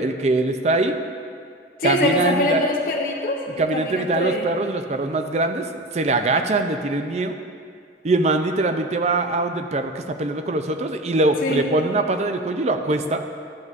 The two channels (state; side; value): normal; both; correlation 0.29